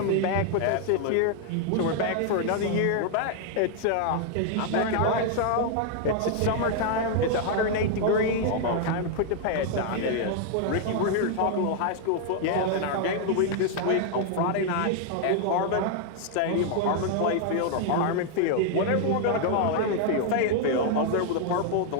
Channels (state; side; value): different; both; correlation 0.00